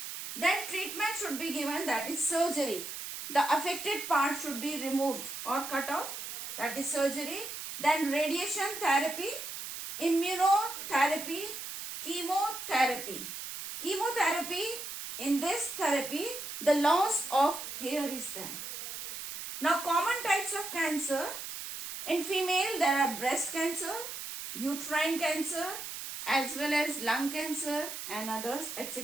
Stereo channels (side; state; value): right; noise; hiss, 8 dB below the sound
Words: Then treatment should be given, that is surgery. The affected part should be removed or cut off, that is surgery. Then radiation therapy, immunotherapy, chemotherapy. Chemotherapy, in this therapy, the loss of hair is there. Now common types of cancer. In female, there are breast cancer, uterine cancer, as well as lung cancer and others,